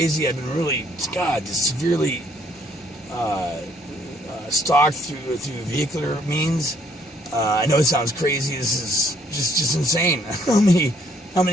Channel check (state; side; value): normal; both; correlation 0.65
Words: I've been really, just severely stalked through vehicular means. I know it sounds crazy. This is just insane. How